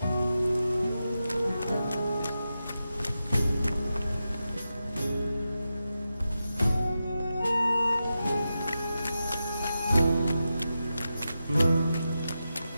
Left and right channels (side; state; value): both; inverted; correlation -0.90